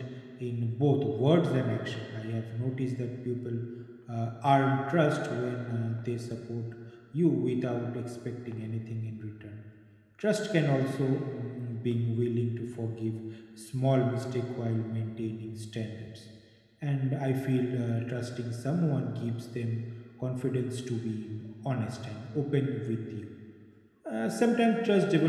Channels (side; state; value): both; identical; correlation 1.00